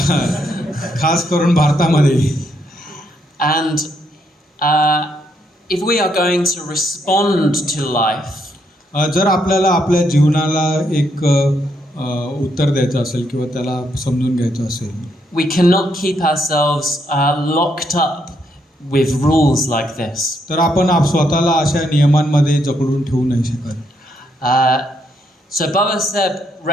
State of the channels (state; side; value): normal; both; correlation 0.76